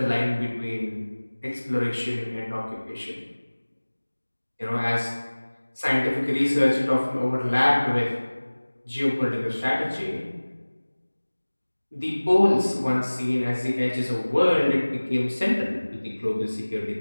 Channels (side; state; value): both; inverted; correlation -1.00